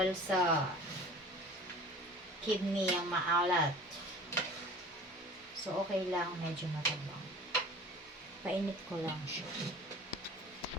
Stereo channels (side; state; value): both; normal; correlation 0.43